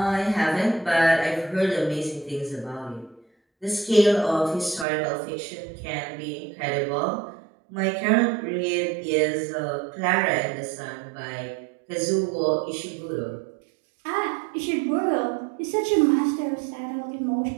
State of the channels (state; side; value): drops out; left; at 4.9 s